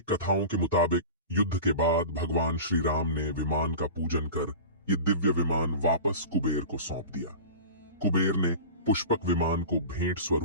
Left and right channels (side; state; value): both; inverted; correlation -0.33